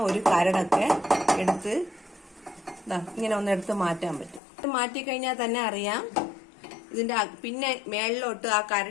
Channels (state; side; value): drops out; right; at 4.4 s